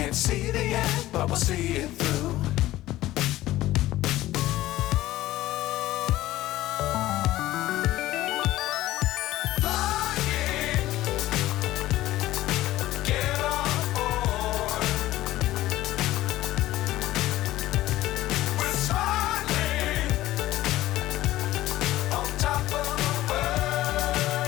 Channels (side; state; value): right; quieter; 15.7 dB